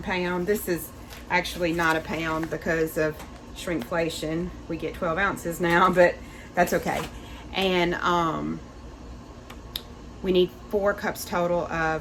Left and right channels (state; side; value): identical; both; correlation 1.00